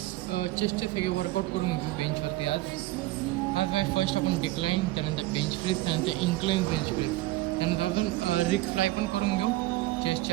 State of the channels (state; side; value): quieter; left; 17.8 dB